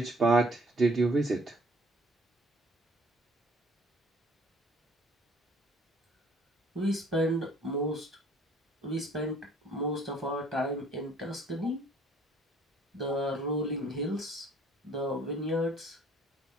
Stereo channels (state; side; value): normal; both; correlation 0.58